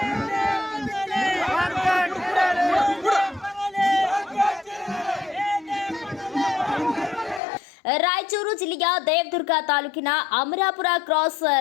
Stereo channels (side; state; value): right; drops out; at 7.4 s